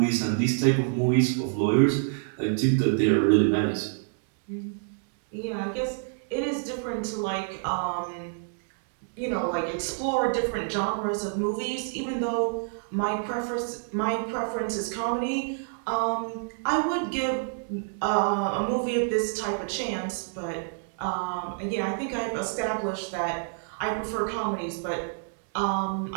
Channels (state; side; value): silent; left; 60 dB below the other